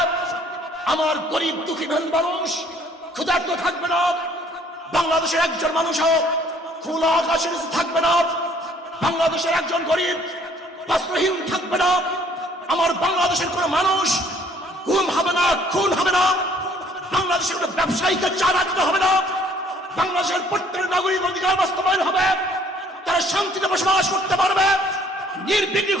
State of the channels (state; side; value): normal; both; correlation 0.60